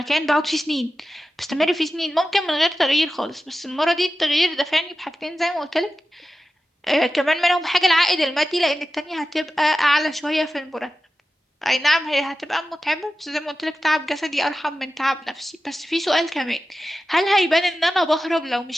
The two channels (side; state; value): both; normal; correlation 0.93